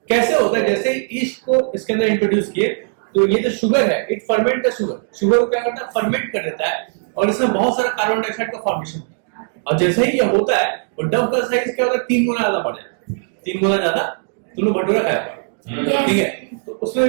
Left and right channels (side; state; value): left; silent; digital silence